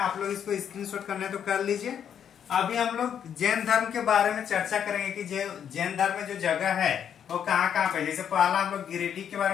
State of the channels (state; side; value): quieter; right; 8.6 dB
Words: लोग इसको स्क्रीनशॉट करने तो कर लीजिए। अभी हम लोग जैन धर्म के बारे में चर्चा करेंगे कि जैन धर्म में जो जगह है वो कहाँ कहाँ पे। जैसे पहला हम लोग गिरिडीह के बारे